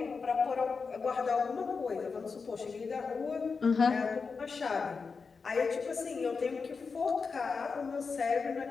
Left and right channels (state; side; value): quieter; right; 4.9 dB